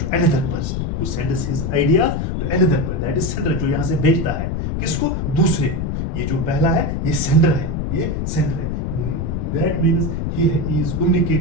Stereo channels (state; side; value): noise; left; rumble, 1 dB below the sound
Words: to another person. Who sends his ideas to another person. That is sender. जो यहाँ से भेजता है किसको? दूसरे को. ये जो पहला है, ये sender है. ये sender है. That means he is